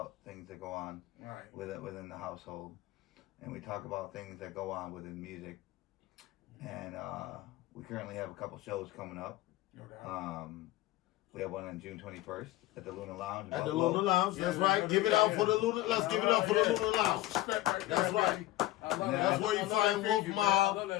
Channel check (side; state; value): right; quieter; 16.4 dB